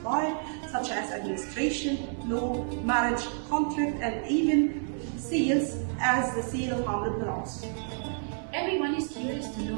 life, such as administration, law, marriage, contract, and even seals, as the seal of Amr ibn al-As. Everyone is curious to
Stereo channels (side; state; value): left; silent; 58 dB below the other